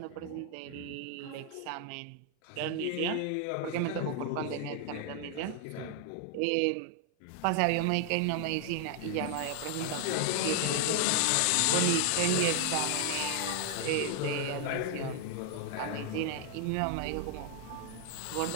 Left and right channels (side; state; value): both; different; correlation 0.00